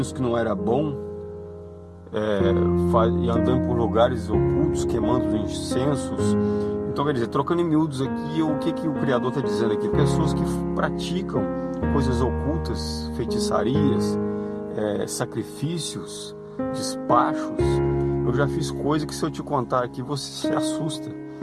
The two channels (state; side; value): identical; both; correlation 1.00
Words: que não era bom, e andando por lugares ocultos, queimando incensos. Então, quer dizer, trocando em miúdos aqui, o que o Criador está dizendo aqui? Pessoas que praticam coisas ocultas, feitiçarias, sacrifícios, despachos. Eu já fiz coisa que, se eu te contar aqui, você se assusta.